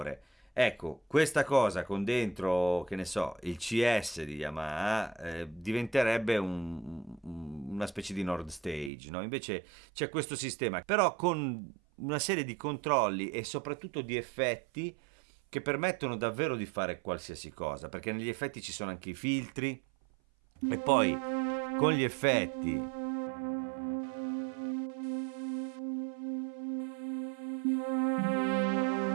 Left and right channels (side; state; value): left; drops out; at 8.9 s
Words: Ecco, questa cosa con dentro, che ne so, il CS di Yamaha diventerebbe una specie di Nord Stage, no? Invece c'è questo sistema, però con una serie di controlli e soprattutto di effetti che permettono davvero di fare qualsiasi cosa, perché negli effetti ci sono anche i filtri e poi con gli effetti